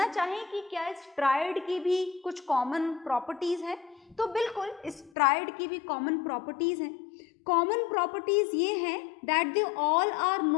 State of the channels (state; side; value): drops out; right; at 5.1 s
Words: चाहें कि क्या इस ट्राइड की भी कुछ कॉमन प्रॉपर्टीज हैं, तो बिल्कुल इस ट्राइड की भी कॉमन प्रॉपर्टीज हैं। कॉमन प्रॉपर्टीज ये हैं that they all are